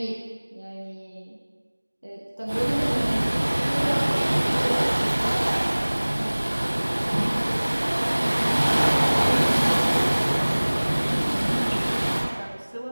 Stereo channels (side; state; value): both; inverted; correlation -1.00